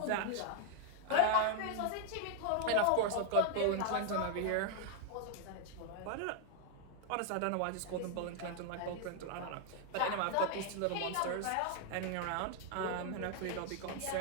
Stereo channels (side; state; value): both; different; correlation 0.00